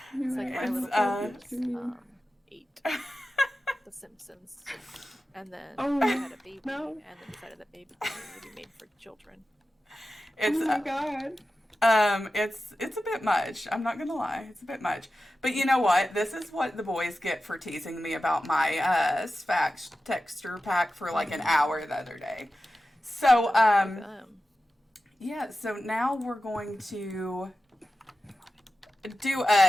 It's like My Little Ponies 8. The Simpsons. And then they had a baby, and then decided that baby would be made for children. It's, oh my god. It's a bit much. I'm not gonna lie, it's a bit much. But you know what? This is what the boys get for teasing me about my Sfax texture pack for like an hour the other day. So yeah. So now we're going to do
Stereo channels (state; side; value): normal; both; correlation 0.93